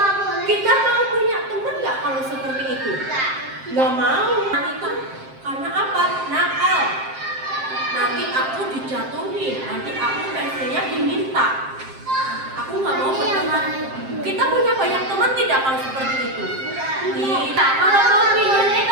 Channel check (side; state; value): left; late; 7.6 ms